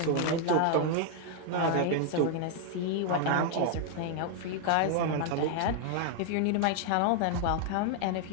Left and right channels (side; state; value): both; different; correlation 0.00